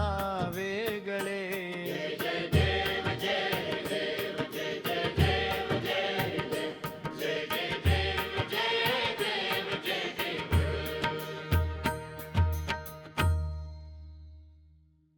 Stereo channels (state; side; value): identical; both; correlation 1.00